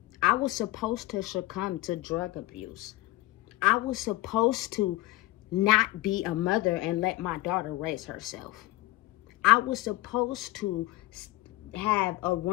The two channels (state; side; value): quieter; right; 18.4 dB